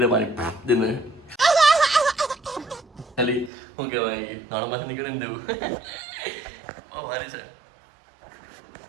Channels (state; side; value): drops out; left; at 3.5 s